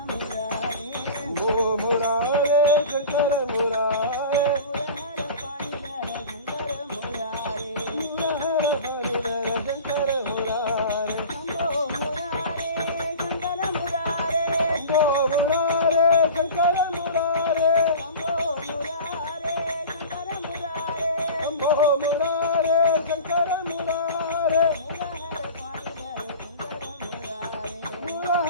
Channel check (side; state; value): both; inverted; correlation -0.37